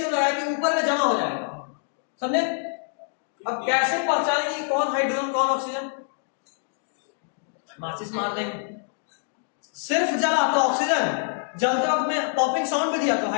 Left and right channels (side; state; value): right; silent; digital silence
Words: लगाया कि ऊपर में जमा हो जाएगा, समझे? अब कैसे पहचानेंगे कौन हाइड्रोजन कौन ऑक्सीजन? माचिस मार देंगे। सिर्फ जला तो ऑक्सीजन, जलते वक्त में पॉपिंग साउंड भी दिया तो